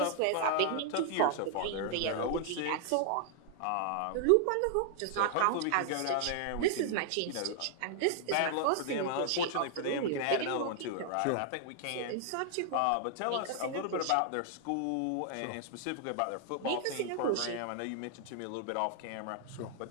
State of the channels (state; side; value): different; both; correlation -0.01